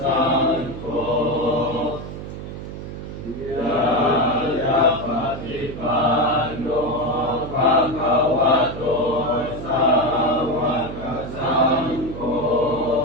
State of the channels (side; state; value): right; noise; hum, 9 dB below the sound